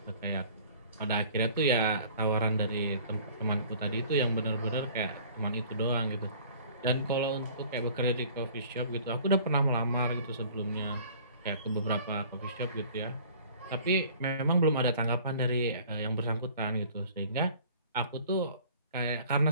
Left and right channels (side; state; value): both; inverted; correlation -0.50